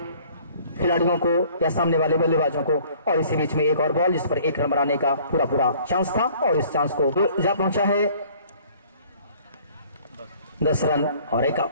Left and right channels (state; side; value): inverted; both; correlation -0.54